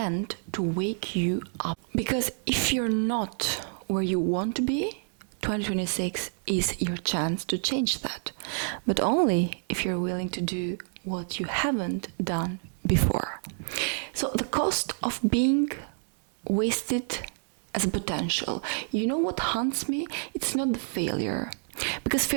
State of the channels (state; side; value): silent; left; digital silence